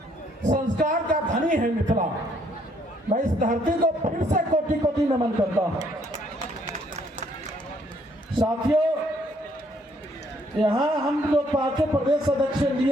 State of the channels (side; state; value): both; normal; correlation 0.67